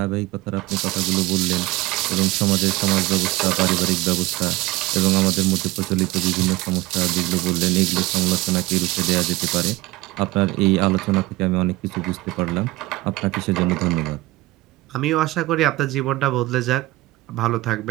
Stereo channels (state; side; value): quieter; left; 19.4 dB